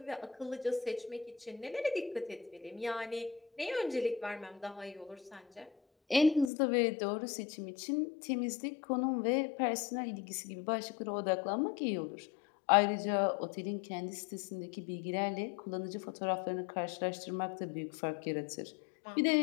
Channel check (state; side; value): drops out; right; at 6.5 s